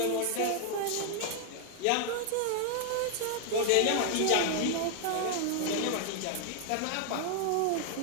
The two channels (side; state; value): both; different; correlation 0.00